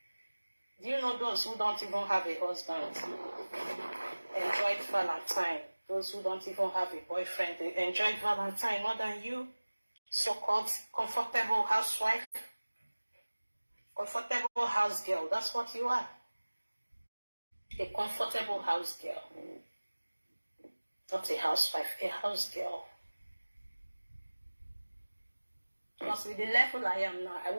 Do you know those who don't even have a husband enjoyed Valentine? Those who don't even have a boyfriend, they enjoyed Valentine more than you. So-called comfortable housewife, comfortable house girl. That's what you are. A comfortable house girl. Not a housewife, a house girl. Because with the level I am now, I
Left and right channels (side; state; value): both; inverted; correlation -1.00